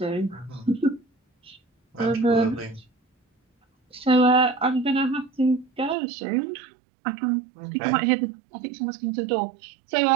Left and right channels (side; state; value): left; drops out; at 6.0 s